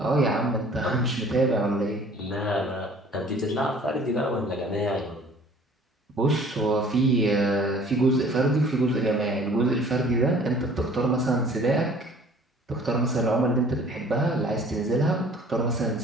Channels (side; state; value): both; normal; correlation 0.52